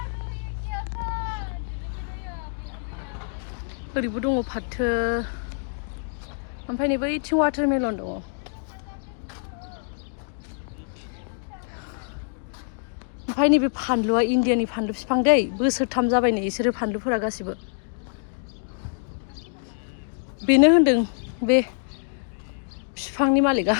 ओरैबो दङ फाथो ओमफ्राय नै बैथिं वाटारमेलन दङ ओमफ्राय नैबे फानलुआ इण्डियानि फानलु बिफां दै बोसोरथाम जाबाय नै बिसोरो फानलुफोरा गासिबो बेनो होनदों बे बिफांनि मालिकआ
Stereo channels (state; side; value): silent; right; digital silence